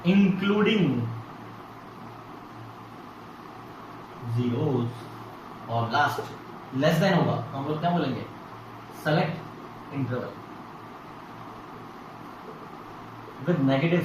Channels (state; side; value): identical; both; correlation 1.00